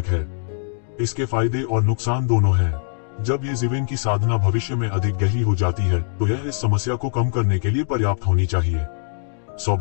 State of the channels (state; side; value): silent; right; digital silence